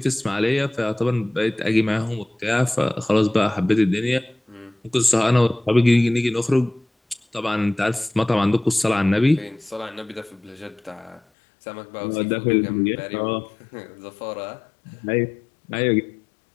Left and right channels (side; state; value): right; drops out; at 11.2 s